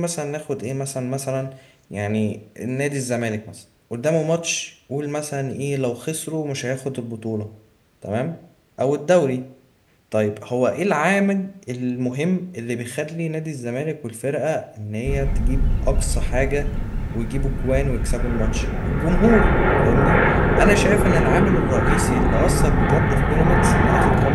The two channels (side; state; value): both; identical; correlation 1.00